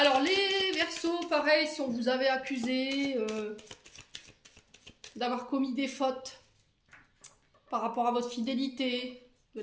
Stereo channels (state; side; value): identical; both; correlation 1.00